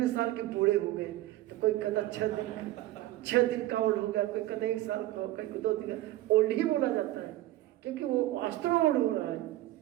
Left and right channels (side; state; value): left; quieter; 15.8 dB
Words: साल के बूढ़े हो गए? तो कोई कहता 6 दिन का ओल्ड हो गया, कोई कहता 1 साल का हो गया, कोई 2 दिन का। ओल्ड ही बोला जाता है क्योंकि वो वास्तव में ओल्ड हो रहा है।